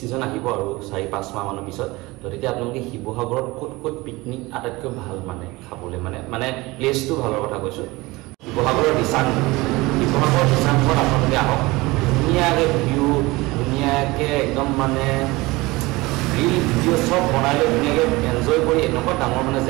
আহিব আৰু 4-5 মাহমানৰ পিছত। তো তেতিয়া আপোনালোকে শিৱসাগৰত ক'ত পিকনিক আটাইতকৈ ভাল মানে খাবলৈ মানে প্লেচটো ভালৰ কথা কৈছোঁ। শিৱসাগৰৰ দিচাংমুখত আপোনালোকে আহক, ধুনীয়াকৈ ভিউ, ধুনীয়াকৈ একদম মানে ৰিল ভিডিঅ' চব বনাই লৈ ধুনীয়াকৈ এনজয় কৰি এনেকুৱা ডাঙৰ মানে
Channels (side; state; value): left; quieter; 21.7 dB